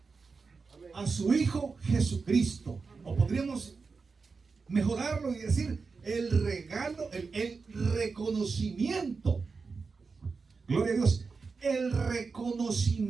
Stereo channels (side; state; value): left; quieter; 4.7 dB